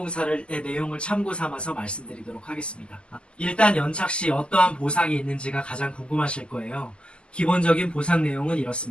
내용을 참고 삼아서 말씀드리도록 하겠습니다. 일단 연착 시 어떠한 보상이 있는지가 가장 궁금하실 거예요. 기본적인 보상 내용은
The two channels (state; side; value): late; right; 0.051 ms